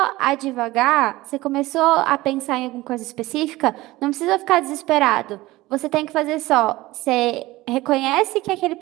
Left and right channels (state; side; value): quieter; left; 18.8 dB